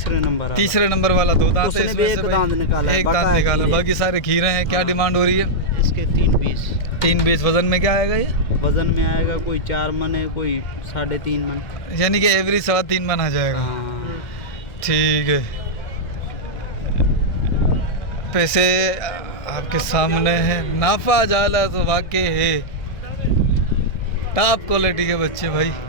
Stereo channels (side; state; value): right; late; 1.7 ms